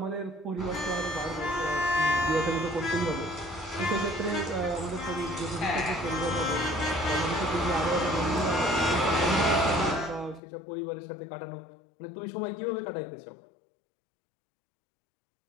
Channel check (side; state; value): right; drops out; at 10.4 s